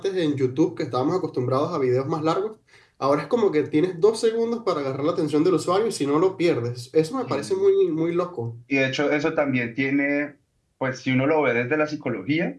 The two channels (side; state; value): both; identical; correlation 1.00